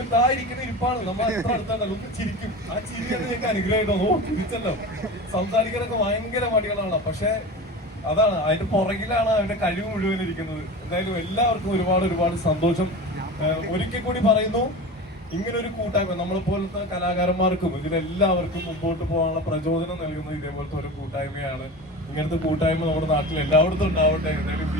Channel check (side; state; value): both; normal; correlation 0.30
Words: ഇരിക്കുന്ന ഇരിപ്പാണ്. നമ്മൾ എത്ര അടുത്താണല്ലോ, ഒന്ന് ചിരിക്കും. ആ ചിരിയാണ് ഞങ്ങൾക്ക് അനുഗ്രഹമായിട്ടോ. തിരിച്ചല്ലോ, സംസാരിക്കാനൊക്കെ ഭയങ്കര മടികളാണ്. പക്ഷെ അതാണ്, അതിന്റെ പുറകിലാണ് അവന്റെ കഴിവ് മുഴുവൻ ഇരിക്കുന്നത്. എന്തായാലും എല്ലാവർക്കും ഒരുപാട് സന്തോഷം. ഒരിക്കൽ കൂടി പറയുന്നു, ഇങ്ങനൊരു കൂട്ടായ്മ നമ്മളെപ്പോലത്തെ കലാകാരന്മാർക്കും ഇതിലെല്ലാവർക്കും മുമ്പോട്ട് പോകാനുള്ള പ്രചോദനം നൽകുന്നത് ഇതേപോലത്തെ ഒരു കൂട്ടായ്മയാണ്. ഇങ്ങനത്തെ കൂട്ടായ്മ നമ്മുടെ നാട്ടിൽ എല്ലായിടത്തും ഉണ്ടാവട്ടെ. എന്തായാലും